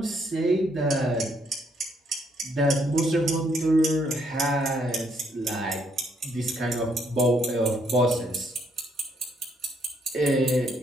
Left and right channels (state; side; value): normal; both; correlation 0.71